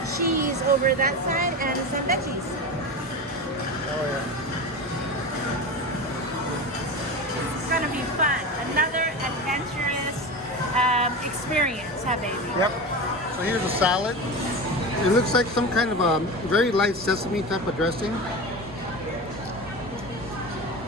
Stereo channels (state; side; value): normal; both; correlation 0.26